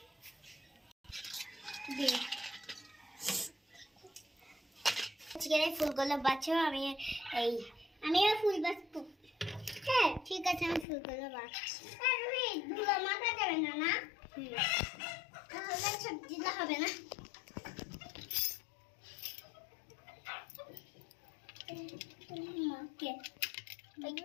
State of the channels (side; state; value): right; drops out; at 10.9 s